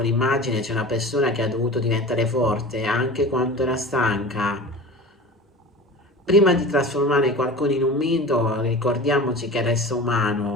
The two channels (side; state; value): both; normal; correlation 0.35